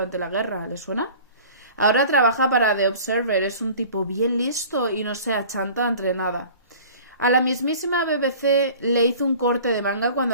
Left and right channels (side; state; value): both; inverted; correlation -0.44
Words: la guerra. ¿Le suena? Ahora trabaja para The Observer, es un tipo bien listo y no se achanta entre nada. A la mismísima BBC le hizo un corte de manga